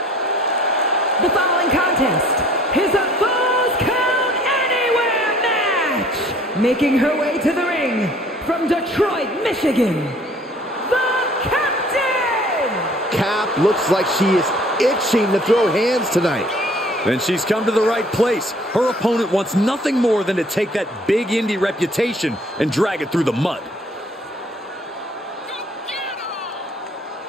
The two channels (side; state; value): both; normal; correlation 0.55